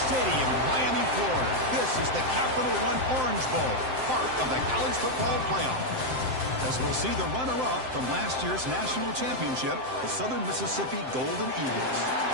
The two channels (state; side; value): late; left; 7.7 ms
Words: Stadium in Miami, Florida. This is the Capital One Orange Bowl, part of the college football playoff. As we'll see the runner-up from last year's national championship, the Southern Mississippi Golden Eagles,